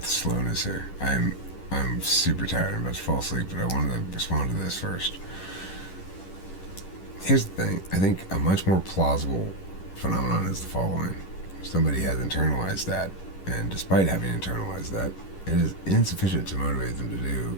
slowness here. I'm super tired. I'm about to fall asleep, but I wanted to respond to this first. Here's the thing. I think a much more plausible phenomenon is the following. Somebody has internalized that, and despite having internalized that, it is insufficient to motivate them to do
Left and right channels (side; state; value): right; late; 11 ms